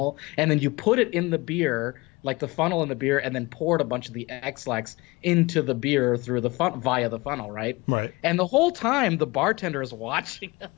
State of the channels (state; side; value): quieter; right; 23.4 dB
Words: and then you put it in the beer, like the funnel in the beer, and then poured a bunch of the X-Lax into the beer through the via the funnel, right? Right. And the whole time the bartender is watching